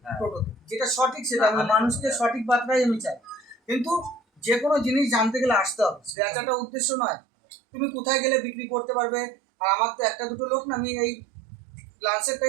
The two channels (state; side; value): drops out; left; at 6.2 s